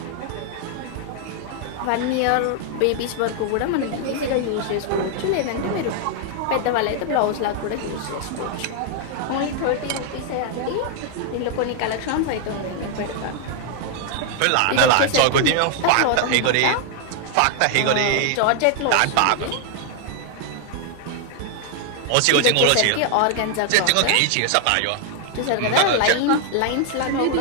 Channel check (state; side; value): different; both; correlation 0.00